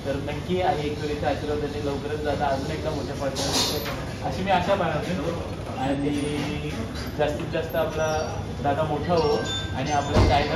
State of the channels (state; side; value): identical; both; correlation 1.00